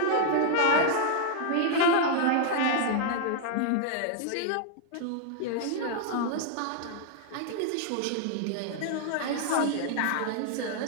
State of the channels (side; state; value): both; different; correlation 0.00